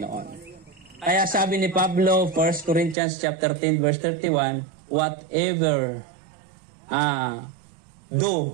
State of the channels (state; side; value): drops out; left; at 3.0 s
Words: Kaya sabi ni Pablo, 1 Corinthians chapter 10 verse 31, whatever